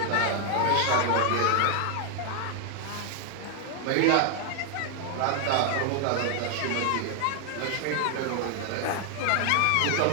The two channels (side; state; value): both; different; correlation 0.00